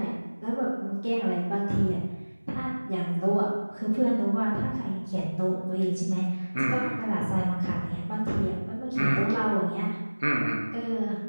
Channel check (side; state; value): both; inverted; correlation -1.00